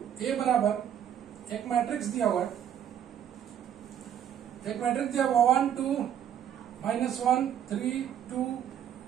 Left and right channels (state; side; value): quieter; left; 9.6 dB